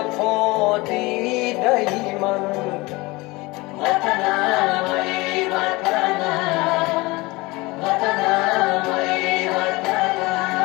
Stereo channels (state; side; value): quieter; right; 22.8 dB